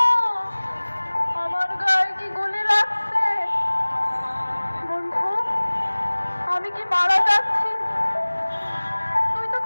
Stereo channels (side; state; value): both; inverted; correlation -1.00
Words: আমার গায়ে কি গুলি লাগছে? বন্ধু, আমি কি মারা যাচ্ছি? তুই তো